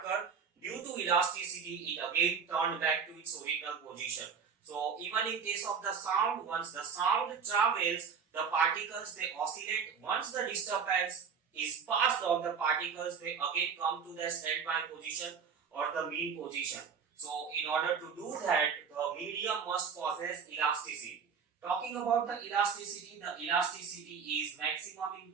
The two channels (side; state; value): left; quieter; 6.4 dB